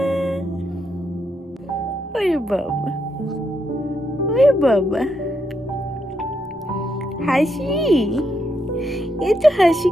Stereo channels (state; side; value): normal; both; correlation 0.79